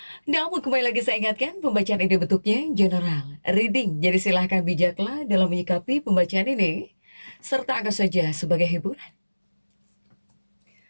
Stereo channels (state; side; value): inverted; both; correlation -1.00